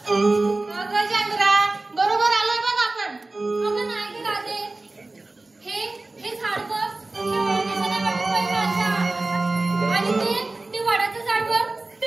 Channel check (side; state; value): left; quieter; 3.1 dB